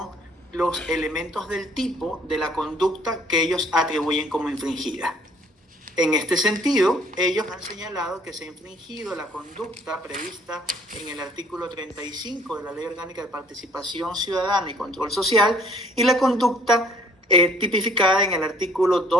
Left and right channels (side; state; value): both; normal; correlation 0.59